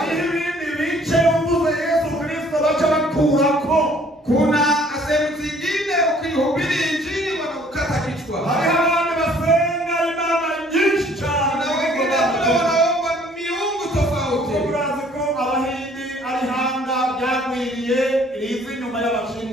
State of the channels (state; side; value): normal; both; correlation 0.58